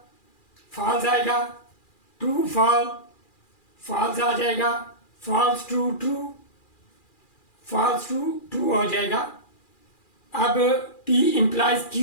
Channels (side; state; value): right; late; 2.4 ms